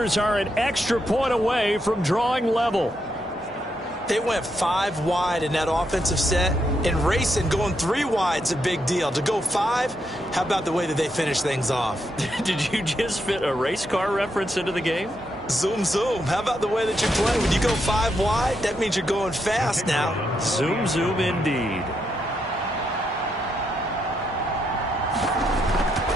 are an extra point away from drawing level. They went 5 wide in that offensive set, and racing going 3 wide is a big deal. To go 5, how about the way that they finish things off? Did you just fit a race car reference into the game? Zoom, zoom. How about the way that you play? When you go 5 wide, that means you're going fast now. Zoom, zoom indeed.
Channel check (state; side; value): normal; both; correlation 0.80